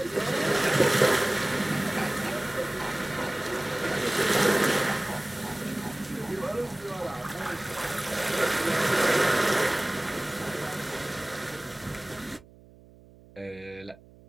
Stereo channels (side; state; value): right; noise; hum, 24 dB below the sound